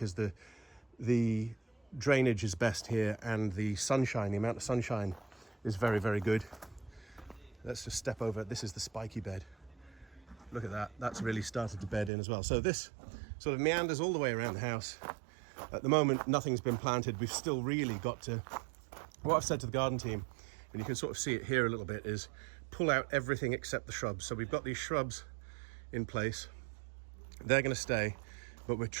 the drainage is best here and the sunshine, the amount of sunshine is very, very good. Let's just step over. This is the spiky bed. Look at that. That's really started to bed in as well. So this sort of meanders all the way around the house. At the moment, nothing's been planted. We've still really got to, what I've said to the garden team, and you can sort of see it here a little bit, is pull out everything except the shrubs. So we've got these shrubs in place. They're going to stay, but we're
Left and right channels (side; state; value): left; drops out; at 12.1 s